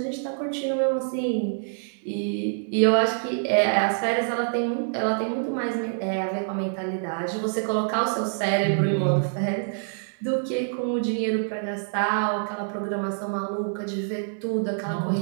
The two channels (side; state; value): left; silent; digital silence